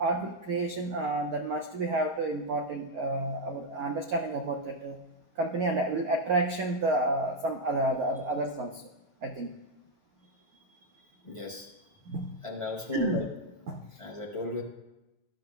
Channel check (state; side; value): late; right; 1.5 ms